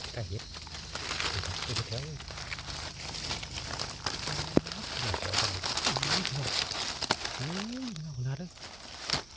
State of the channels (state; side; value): noise; right; hum, 20 dB below the sound